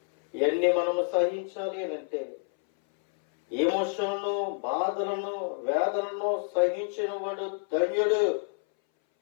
ఇవన్నీ మనము సహించాలి అని అంటే ఎమోషన్లను, బాధలను, వేదనను సహించిన వాడు ధన్యుడు.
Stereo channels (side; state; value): right; silent; 59 dB below the other